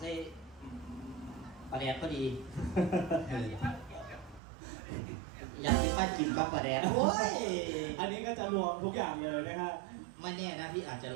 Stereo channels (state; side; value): drops out; left; at 4.4 s